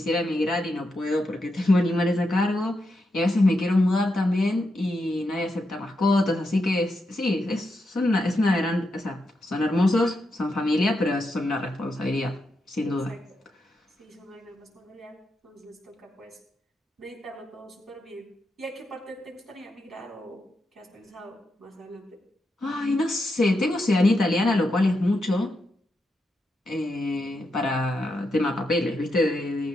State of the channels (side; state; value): both; normal; correlation 0.85